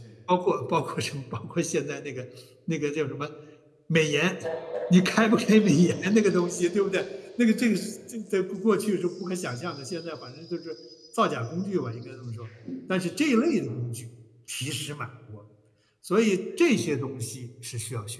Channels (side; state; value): both; identical; correlation 1.00